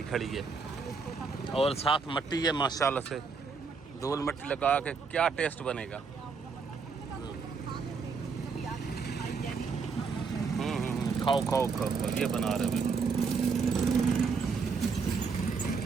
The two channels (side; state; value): left; quieter; 5.1 dB